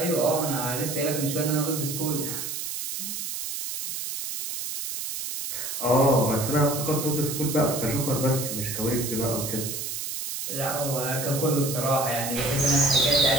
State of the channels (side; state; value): right; noise; hiss, 5 dB below the sound